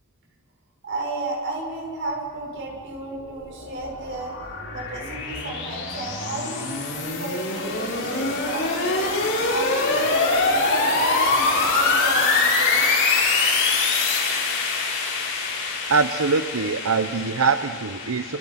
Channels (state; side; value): normal; both; correlation -0.12